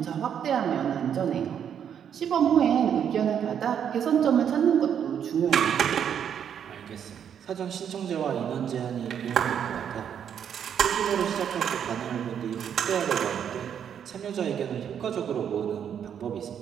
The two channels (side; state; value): left; quieter; 8.5 dB